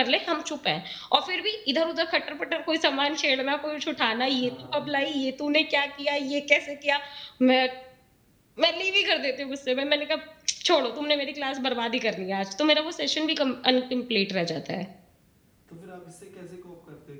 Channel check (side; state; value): both; identical; correlation 1.00